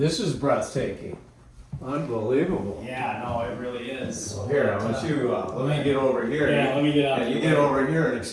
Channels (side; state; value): both; identical; correlation 1.00